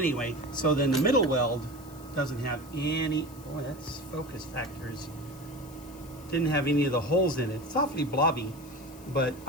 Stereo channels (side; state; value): left; noise; hiss, 22 dB below the sound